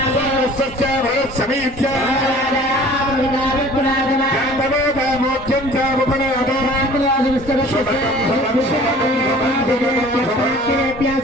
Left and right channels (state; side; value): normal; both; correlation 0.48